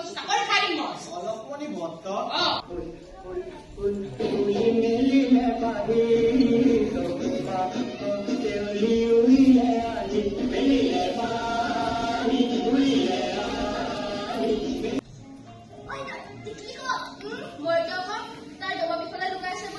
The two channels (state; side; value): identical; both; correlation 1.00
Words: sakori kharim moi. Olop mani bhoktok?